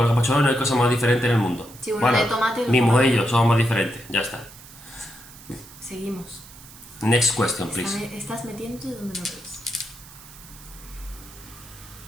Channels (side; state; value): right; noise; hiss, 19 dB below the sound